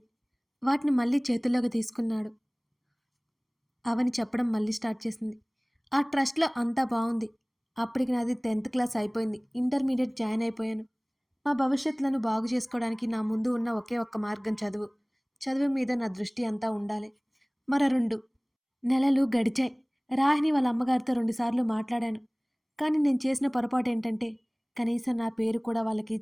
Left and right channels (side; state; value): both; identical; correlation 1.00